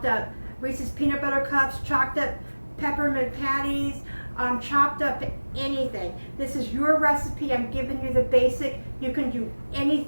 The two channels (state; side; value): inverted; both; correlation -1.00